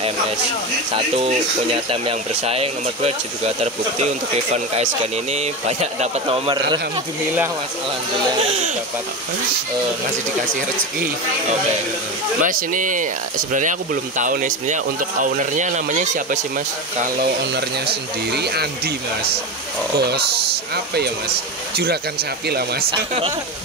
Satu punya tem yang bersaing, nomor dua juga terbukti untuk event KSGN ini banyak dapat nomor. Alhamdulillah mas, alhamdulillah masih dapat, masih dikasih rezeki. Oke. Mas ini sebenarnya aku belum tahu nih sebenarnya untuk ownernya namanya siapa sih mas? Kalau ownernya sendiri Andi mas. Bos apa ya mas? Juragan sapi lah mas.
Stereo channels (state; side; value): normal; both; correlation 0.20